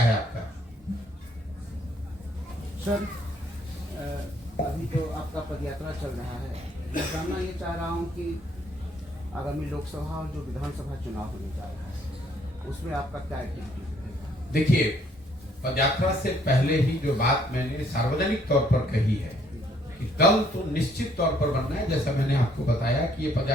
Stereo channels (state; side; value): normal; both; correlation 0.66